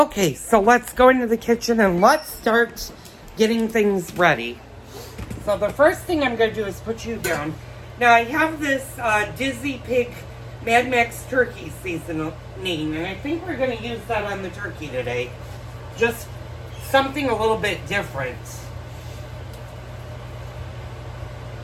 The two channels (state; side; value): identical; both; correlation 1.00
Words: so let's go into the kitchen, and let's start getting things ready. So the first thing I'm going to do is put you down. Now, I have this Dizzy Pig Mad Max turkey seasoning, and I think we're going to use that on the turkey today. Just something a little bit different.